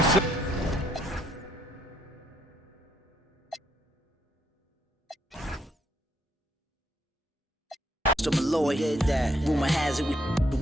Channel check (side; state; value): both; normal; correlation 0.72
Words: Malloy, rumor has it we